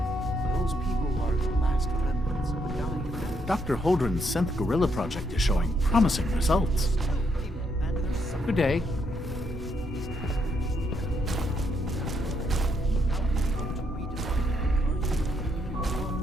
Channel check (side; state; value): both; normal; correlation 0.75